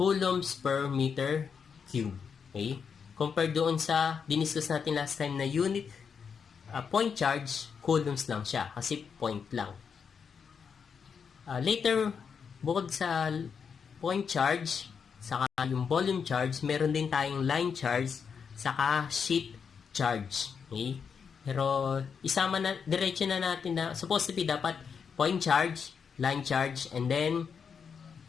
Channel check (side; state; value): right; quieter; 6.4 dB